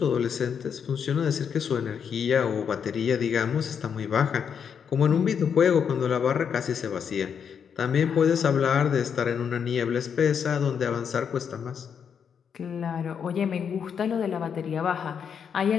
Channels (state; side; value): quieter; right; 7.3 dB